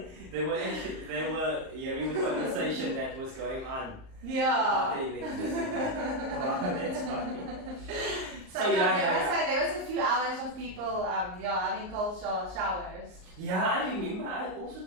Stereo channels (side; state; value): left; late; 38 ms